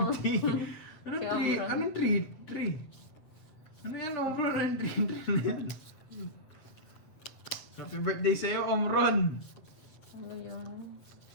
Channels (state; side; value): late; right; 7.8 ms